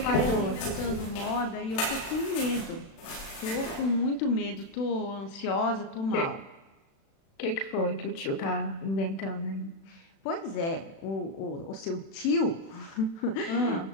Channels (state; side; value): late; right; 36 ms